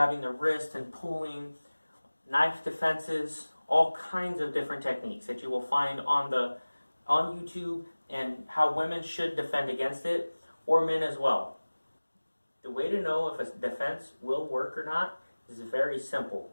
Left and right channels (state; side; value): inverted; both; correlation -1.00